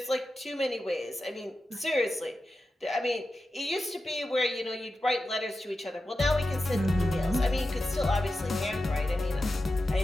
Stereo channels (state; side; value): normal; both; correlation 0.91